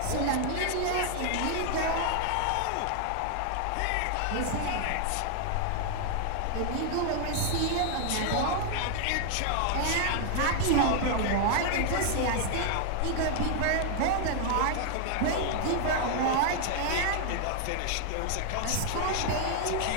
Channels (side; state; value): both; different; correlation 0.00